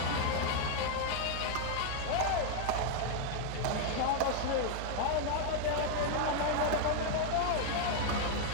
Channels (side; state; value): both; different; correlation 0.00